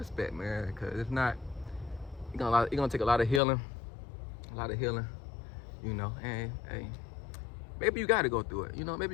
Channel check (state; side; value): drops out; right; at 3.4 s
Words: man. Cause if not, it's gonna take a lot of healing, you know. And hey, maybe you gotta go through it. You know, maybe